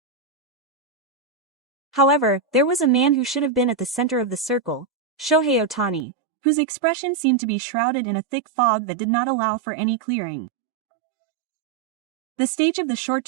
However, there was a man who should have been at the center of the circle, Shohei Ohtani, whose expression seemed to be shrouded in a thick fog that did not allow for any clearing. The stage of the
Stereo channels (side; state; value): left; drops out; at 6.1 s